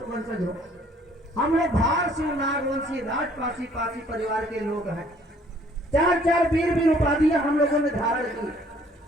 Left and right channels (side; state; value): both; normal; correlation 0.59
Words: वंशज हो। हम लोग भार सिंह नागवंशी राजपासी पासी परिवार के लोग हैं। 4 वीर उपाधियां हम लोगों ने धारण की,